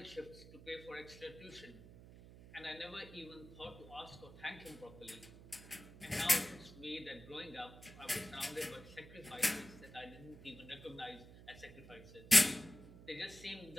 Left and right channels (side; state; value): right; noise; hum, 17 dB below the sound